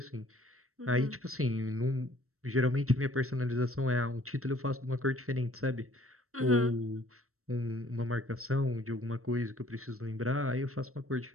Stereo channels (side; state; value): left; late; 0.63 ms